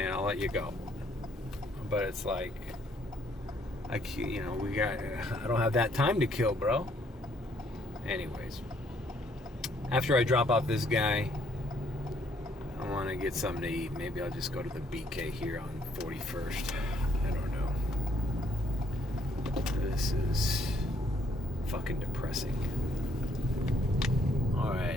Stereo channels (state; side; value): normal; both; correlation 0.67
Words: in, I'll let you go. But it's like, I don't have that time to kill, bro. Anyways, after I drop off this guy, I want to get something to eat. Maybe I'll just go to the BK here on 41st. I don't know. This is fucking depressing.